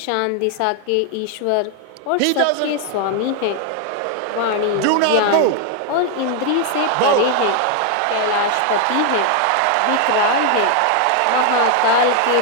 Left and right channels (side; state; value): both; different; correlation 0.00